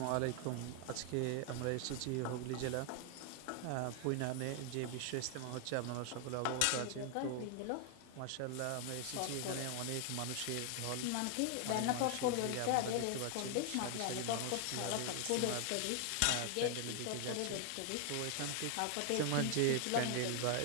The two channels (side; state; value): both; different; correlation 0.00